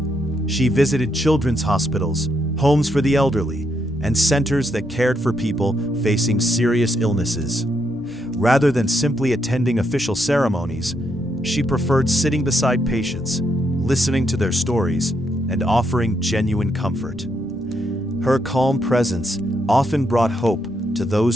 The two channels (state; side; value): normal; both; correlation 0.78